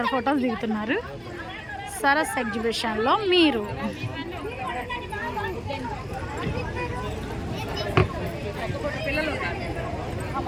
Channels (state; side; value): identical; both; correlation 1.00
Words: ఫొటోస్ దిగుతున్నారు. సరస్ ఎగ్జిబిషన్లో మీరు